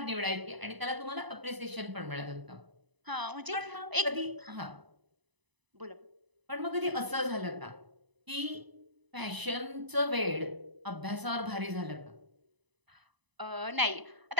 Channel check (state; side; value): late; left; 1.0 ms